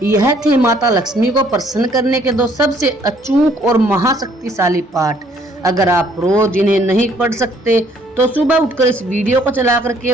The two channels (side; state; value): both; normal; correlation 0.63